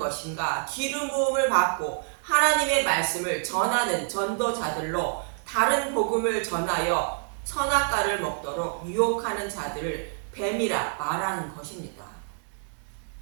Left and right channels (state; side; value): silent; left; digital silence